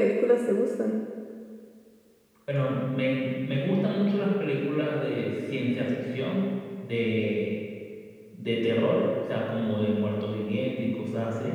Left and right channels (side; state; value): both; identical; correlation 1.00